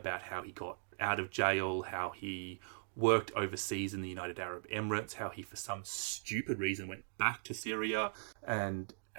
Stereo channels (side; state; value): left; silent; digital silence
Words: how he got out of jail, how he worked overseas in the United Arab Emirates, how he for some stupid reason went back to Syria, and